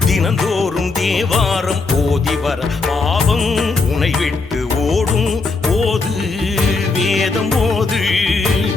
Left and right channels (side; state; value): right; quieter; 3.9 dB